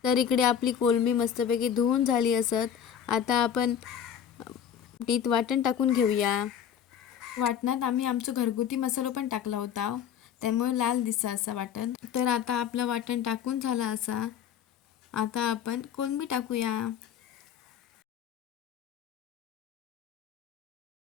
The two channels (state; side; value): quieter; right; 8.7 dB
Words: तर इकडे आपली कोलंबी मस्तपैकी धुवून झाली असत. आता आपण तीत वाटण टाकून घेऊया. वाटणात आम्ही आमचं घरगुती मसाला पण टाकला होता, त्यामुळे लाल दिसा असा वाटण. तर आता आपलं वाटण टाकून झाला असा. आता आपण कोलंबी टाकूया.